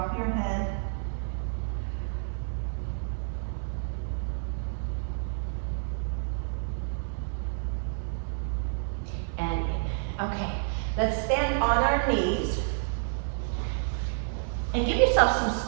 your head. And in. Okay, let's stand on our knees and give yourself some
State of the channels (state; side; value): silent; left; 58 dB below the other